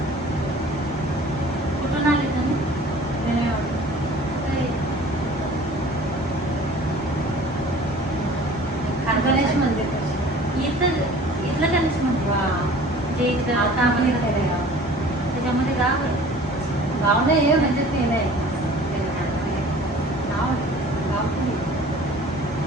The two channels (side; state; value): both; normal; correlation 0.47